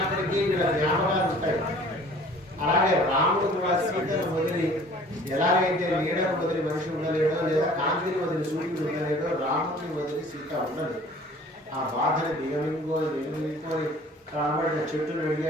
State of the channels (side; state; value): both; normal; correlation 0.50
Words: వీళ్ళ జ్ఞాపకాలు ఉంటాయి. అలాగే రాముడు కూడా సీతను వదిలి ఎలాగైతే నీడను వదిలి మనిషి ఉండలేడో, లేదా కాంతిని వదిలి సూర్యుడు ఉండలేడో, రాముడిని వదిలి సీత ఉండదు. ఆ బాధని దిగమింగుకొని కాబట్టిన చెట్టును